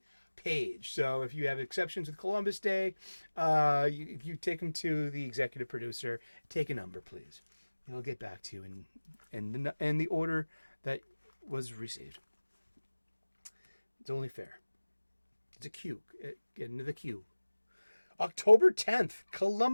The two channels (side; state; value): both; inverted; correlation -1.00